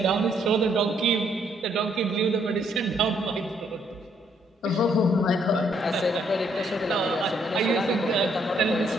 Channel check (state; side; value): normal; both; correlation 0.71